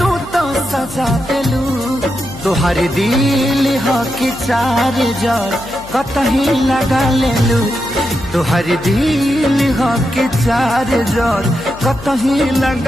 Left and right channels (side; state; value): left; noise; hum, 19 dB below the sound